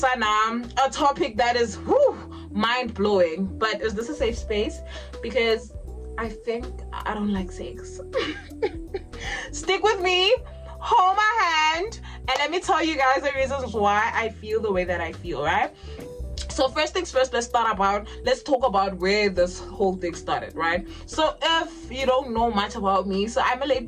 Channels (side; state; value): both; identical; correlation 1.00